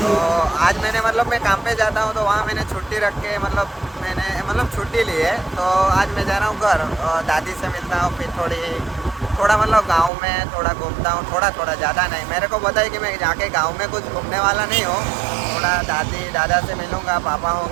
आज मैंने मतलब मैं काम पे जाता हूँ तो वहाँ मैंने छुट्टी रख के मैंने छुट्टी ली है। तो आज मैं जा रहा हूँ घर, और दादी से मिलता हूँ। फिर थोड़ा मतलब गांव में थोड़ा घूमता हूँ, थोड़ा ज़्यादा नहीं। मेरे को पता है कि मैं जाके गांव में कुछ घूमने वाला नहीं हूँ। थोड़ा दादी दादा से मिलूँगा, पापा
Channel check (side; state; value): left; drops out; at 10.1 s